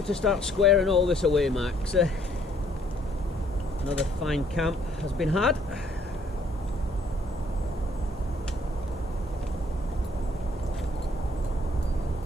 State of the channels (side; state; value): both; normal; correlation 0.64